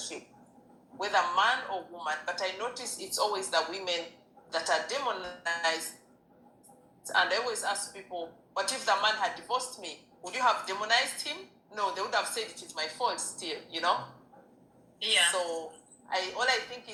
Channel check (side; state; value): both; identical; correlation 1.00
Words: whether man or woman. But I notice it's always the women that are demonized. And I always ask people, what if the man had divorced me? Would you have demonized him? No, they would have said it is my fault still, Yeah. So all I think